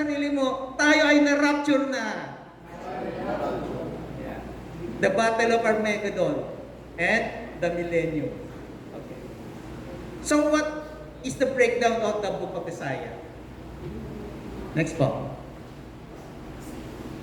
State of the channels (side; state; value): both; identical; correlation 1.00